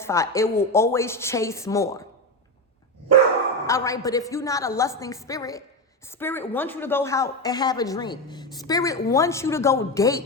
It will always chase more. All right, but if you're not a lusting spirit, Spirit wants you to go out and have a drink. Spirit wants you to go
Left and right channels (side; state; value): both; normal; correlation 0.15